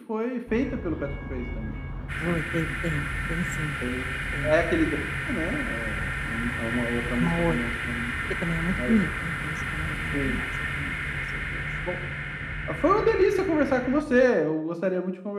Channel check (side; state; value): both; identical; correlation 1.00